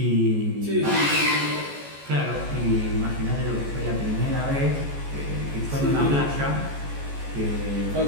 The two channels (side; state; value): left; late; 14 ms